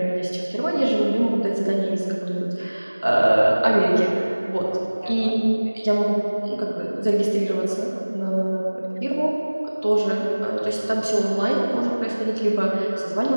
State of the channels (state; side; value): inverted; both; correlation -1.00